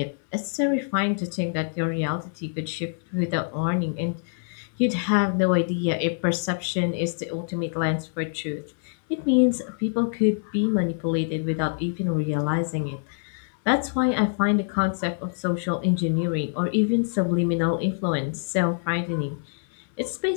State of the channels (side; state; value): right; silent; 61 dB below the other